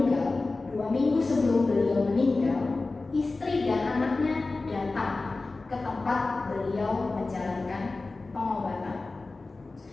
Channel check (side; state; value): right; quieter; 3.5 dB